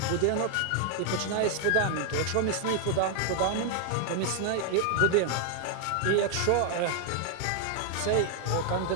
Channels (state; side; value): different; both; correlation 0.00